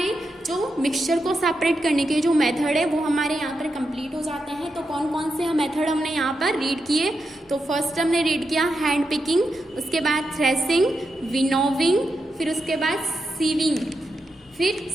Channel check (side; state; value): both; normal; correlation 0.86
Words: जो मिक्सचर को सेपरेट करने के जो मेथड है वो हमारे यहाँ पर कंप्लीट हो जाते हैं। तो कौन कौन से मेथड हमने यहाँ पर रीड किए, तो फर्स्ट हमने रीड किया हैंड पिकिंग, उसके बाद थ्रेसिंग, विनोविंग, फिर उसके बाद सीविंग, फिर